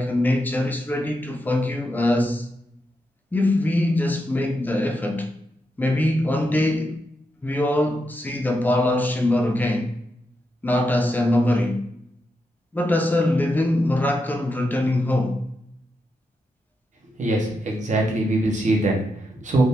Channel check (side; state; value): both; normal; correlation 0.84